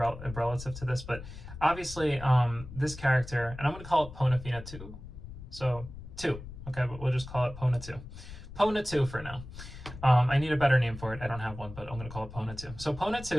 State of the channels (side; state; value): left; noise; rumble, 13 dB below the sound